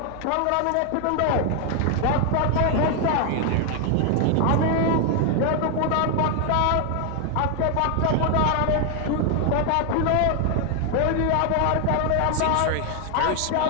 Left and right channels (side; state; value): both; different; correlation 0.00